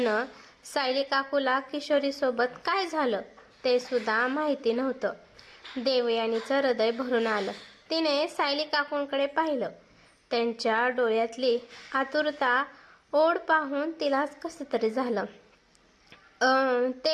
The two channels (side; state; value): both; identical; correlation 1.00